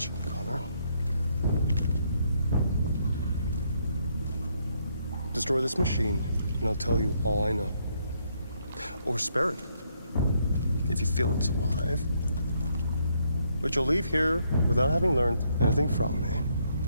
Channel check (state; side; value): inverted; both; correlation -0.73